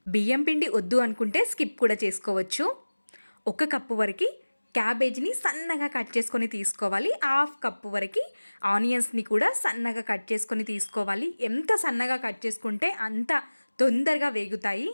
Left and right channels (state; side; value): inverted; both; correlation -1.00